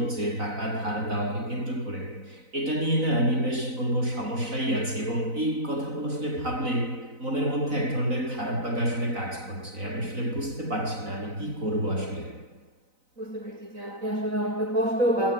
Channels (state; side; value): late; left; 4.0 ms